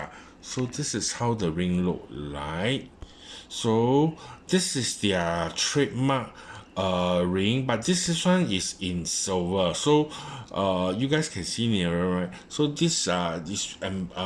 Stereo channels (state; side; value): identical; both; correlation 1.00